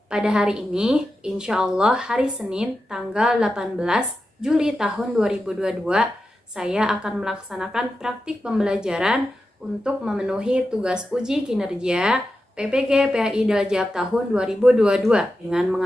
Pada hari ini, insya Allah hari Senin tanggal 18 Juli tahun 2022, saya akan melaksanakan praktik pembelajaran untuk memenuhi tugas uji kinerja PPG PAI Dajab tahun 2022 dengan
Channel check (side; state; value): both; normal; correlation 0.90